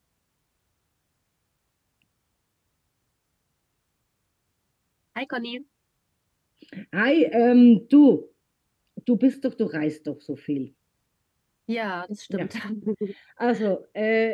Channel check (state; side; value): identical; both; correlation 1.00